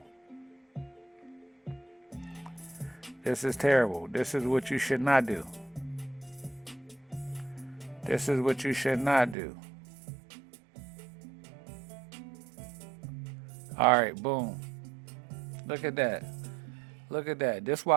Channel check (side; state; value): left; drops out; at 9.3 s